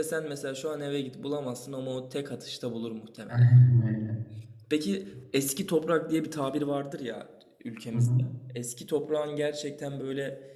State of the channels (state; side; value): identical; both; correlation 1.00